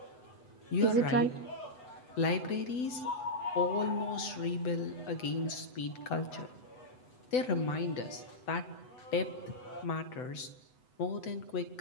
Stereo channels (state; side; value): late; right; 8.0 ms